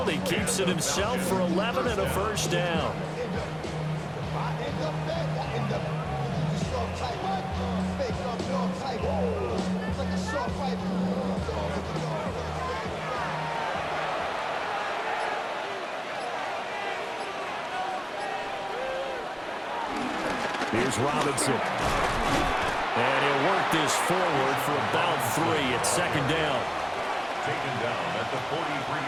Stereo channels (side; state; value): both; identical; correlation 1.00